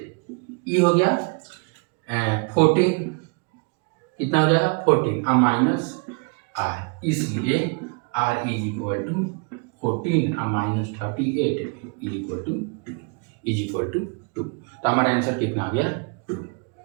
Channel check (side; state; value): left; quieter; 34.3 dB